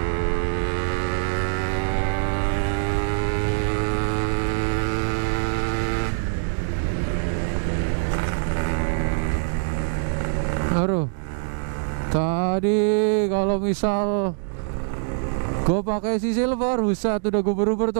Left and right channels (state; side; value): silent; left; digital silence